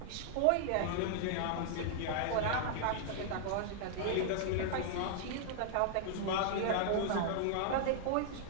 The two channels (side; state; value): both; different; correlation -0.01